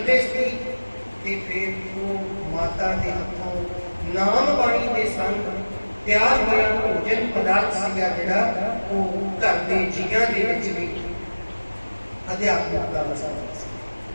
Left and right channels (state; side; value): inverted; both; correlation -1.00